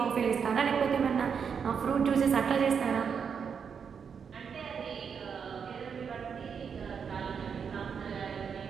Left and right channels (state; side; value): quieter; left; 6.7 dB